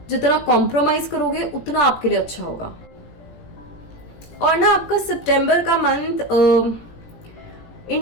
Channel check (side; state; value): right; late; 18 ms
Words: जितना कॉम्प्रोमाइज करोगे, उतना आपके लिए अच्छा होगा। और ना आपका सितंबर का मंथ